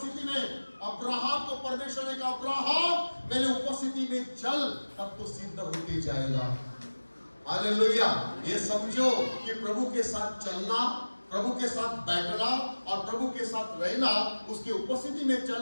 में। अब्राहम को परमेश्वर ने कहा अब्राहम मेरे उपस्थिति में चल, तब तो सिद्ध होते जाएगा। हालेलुया। ये समझो कि प्रभु के साथ चलना, प्रभु के साथ बैठना और प्रभु के साथ रहना, उसकी उपस्थिति में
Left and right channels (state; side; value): inverted; both; correlation -1.00